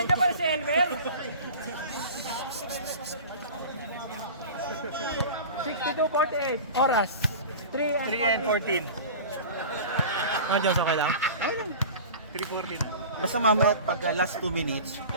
pala si Elmer. 62-48. Oras. 3 and 14. Ah, Diyos, okay lang? 3:40 na. Basta mamaya pag last 2 minutes,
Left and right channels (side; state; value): both; inverted; correlation -0.36